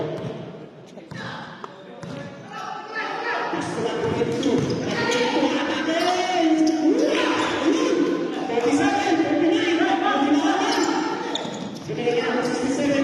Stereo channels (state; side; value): identical; both; correlation 1.00